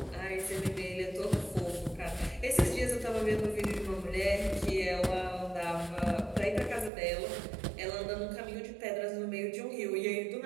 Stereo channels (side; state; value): left; drops out; at 6.9 s